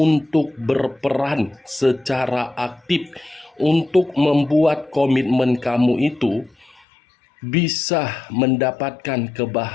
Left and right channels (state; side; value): drops out; right; at 6.8 s